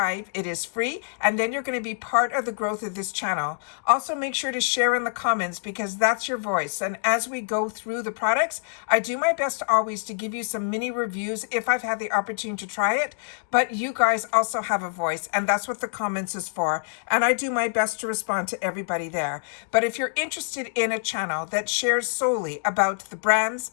It is free and then you're going to be part of the growth of this channel. Also make sure to share in the comments because that's your voice, and as we go through the products, I do my best always to give you some mini reviews if I've had the opportunity to try it, but you guys also have a voice and that's what the comments is for, and I do my best to respond to everybody there. But if you're interested in a channel that shares solely about the brands,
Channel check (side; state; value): right; silent; digital silence